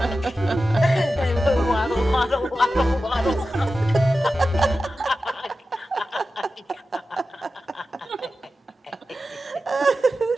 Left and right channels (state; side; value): normal; both; correlation 0.93